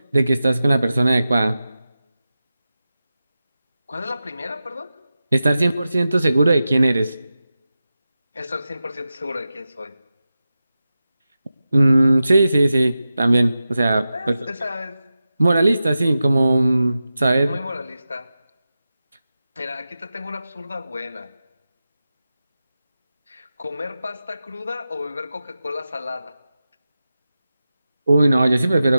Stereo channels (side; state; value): both; inverted; correlation -0.93